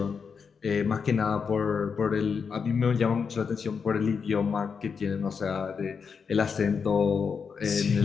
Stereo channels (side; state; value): right; quieter; 6.0 dB